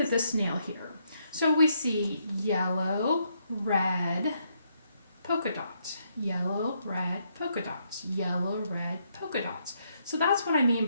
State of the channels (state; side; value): inverted; both; correlation -0.75